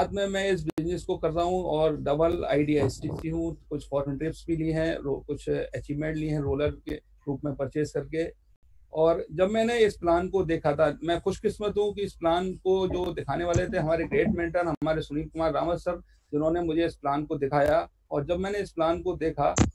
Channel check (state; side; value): identical; both; correlation 1.00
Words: में मैं इस बिजनेस को कर रहा हूं और डबल आईडीएसटीसी हूं। कुछ फॉरेन ट्रिप्स भी ली हैं, कुछ अचीवमेंट ली हैं रोलर के रूप में परचेज करके। और जब मैंने इस प्लान को देखा था, मैं खुशकिस्मत हूँ कि इस प्लान को जो दिखाने वाले थे हमारे ग्रेट मेंटर हमारे सुनील कुमार रावत सर, जिन्होंने मुझे इस प्लान को दिखाया। और जब मैंने इस प्लान को देखा